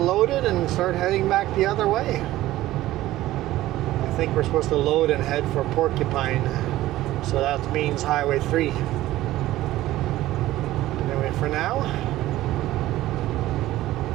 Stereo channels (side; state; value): left; quieter; 15.6 dB